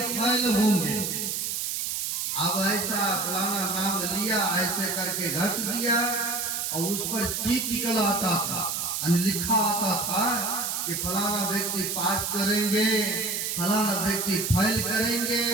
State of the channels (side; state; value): right; noise; hiss, 1 dB below the sound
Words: होंगे। अब ऐसा फलाना नाम लिया, ऐसे करके घस दिया और उस पर चीट निकल आता था, लिखा आता था कि फलाना व्यक्ति पास करेंगे, फलाना व्यक्ति फेल करेंगे।